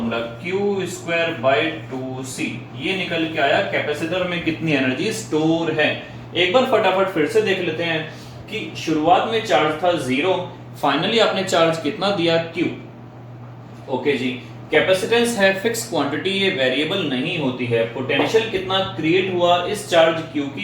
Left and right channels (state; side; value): identical; both; correlation 1.00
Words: Q square bye 2C। ये निकल के आया कैपेसिटर में कितनी एनर्जी स्टोर है। एक बार फटाफट फिर से देख लेते हैं कि शुरुआत में चार्ज था 0, फाइनली आपने चार्ज कितना दिया? Q। ओके जी, कैपेसिटेंस है फिक्स क्वांटिटी, ये वेरिएबल नहीं होती है। पोटेंशियल कितना क्रिएट हुआ इस चार्ज Q